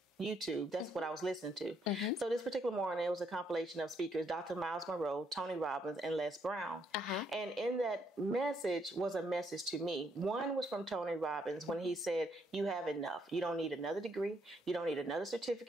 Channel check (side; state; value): both; normal; correlation 0.73